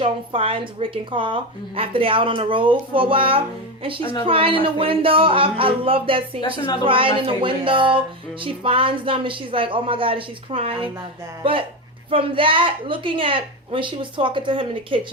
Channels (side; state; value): both; normal; correlation 0.16